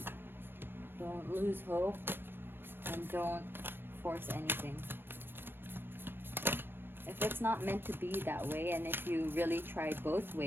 lose hope, and don't force anything. If it's not meant to be that way, and if you really try both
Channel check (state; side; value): late; left; 0.098 ms